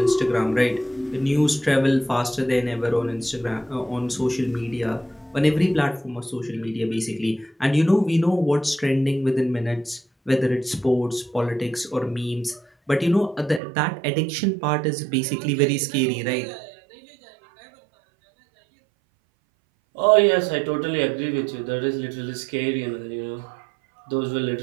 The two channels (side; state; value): left; drops out; at 13.6 s